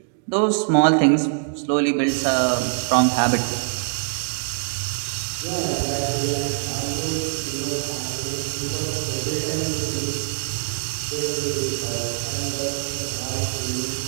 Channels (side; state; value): left; silent; digital silence